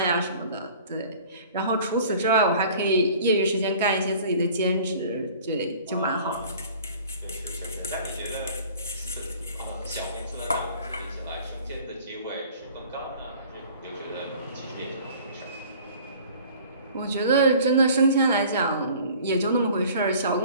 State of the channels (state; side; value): inverted; both; correlation -0.49